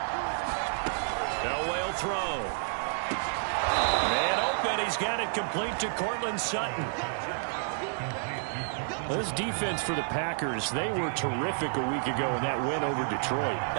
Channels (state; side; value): silent; left; digital silence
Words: Elway will throw. Man open, he's got it complete to Cortland Sutton. This defense for the Packers, they were terrific a week ago in that win over Detroit.